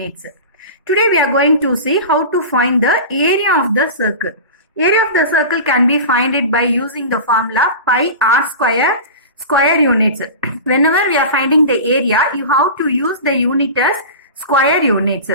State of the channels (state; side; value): inverted; both; correlation -0.31